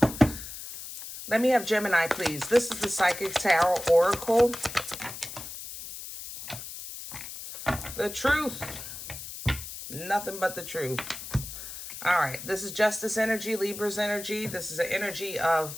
Let me have Gemini, please. This is the Psychic Tarot Oracle. The truth. Nothing but the truth. All right. This is Justice energy, Libra's energy. This is an energy of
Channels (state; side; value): noise; left; hiss, 10 dB below the sound